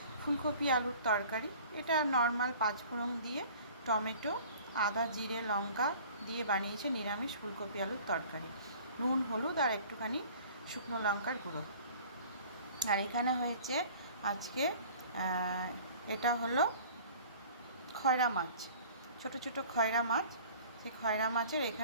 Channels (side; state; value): both; inverted; correlation -0.47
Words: ফুলকপি আলুর তরকারি। এটা নর্মাল পাঁচফোড়ন দিয়ে টমেটো আদা জিরে লঙ্কা দিয়ে বানিয়েছে নিরামিষ ফুলকপি আলুর তরকারি। নুন হলুদ আর একটুখানি শুকনো লঙ্কার গুঁড়ো। আর এখানে হয়েছে আজকে এটা হলো খয়রা মাছ, ছোট ছোট খয়রা মাছ। সেই খয়রা মাছের